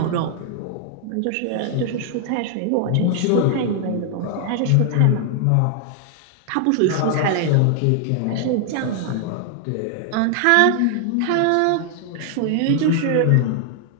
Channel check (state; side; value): different; both; correlation 0.00